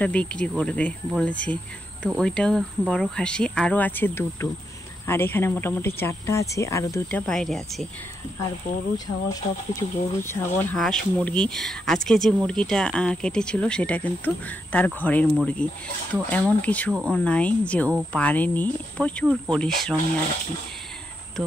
বিক্রি করবে বলেছে। তো ওইটাও বড় খাসি, আরও আছে 2টো, আর এখানে মোটামুটি 4টা আছে, আরও 2টা বাইরে আছে। আর গরু ছাগল সব কিছু, গরু ছাগল হাঁস মুরগি, আজকে যে মুরগিটা কেটেছিল সেটা কিন্তু তার ঘরের মুরগি। তো এমন কিছু ও নাই যে ও পারেনি, প্রচুর পরিশ্রমী আর কি। তো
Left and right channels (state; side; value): normal; both; correlation 0.82